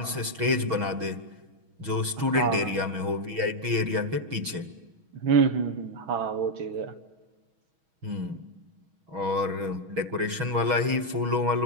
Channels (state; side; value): late; left; 6.3 ms